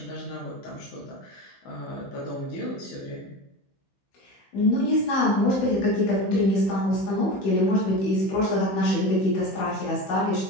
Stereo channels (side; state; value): right; late; 16 ms